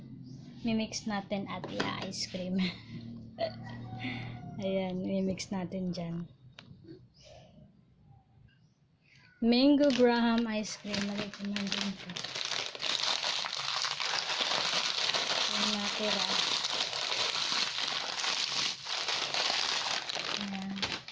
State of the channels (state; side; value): identical; both; correlation 1.00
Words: Mimix natin at ice cream. Ayan, mimix natin dyan. Mango Graham ice cream. Lagay ko man din ito. Yung natira. Ayan.